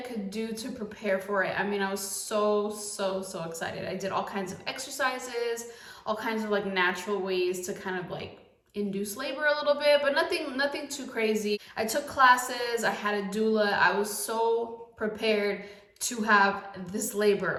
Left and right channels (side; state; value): both; identical; correlation 1.00